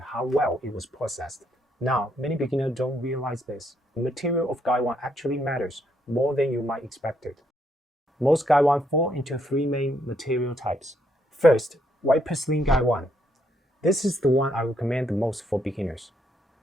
how well it was processed. Now, many beginners don't realize this. The material of Gaiwan actually matters more than you might expect it. Most Gaiwan fall into three main material types. First, white porcelain Gaiwan. This is the one I recommend the most for beginners.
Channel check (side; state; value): both; normal; correlation 0.74